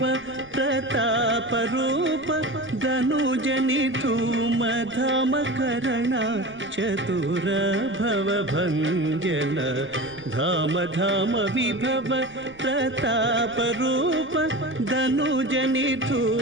ప్రతాప రూప ధనుజని ధూమ ధామ కరణ చతుర భవ భంజన. ధామ ధామ విభవ ప్రతాప రూప ధనుజని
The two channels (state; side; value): noise; right; rumble, 26 dB below the sound